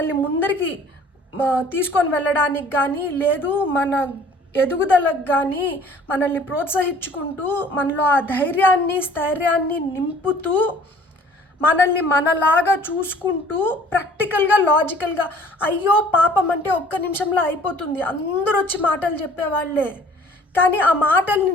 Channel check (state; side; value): normal; both; correlation 0.52